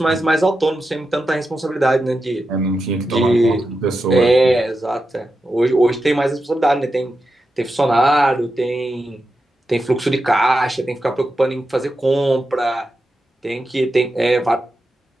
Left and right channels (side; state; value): both; normal; correlation 0.89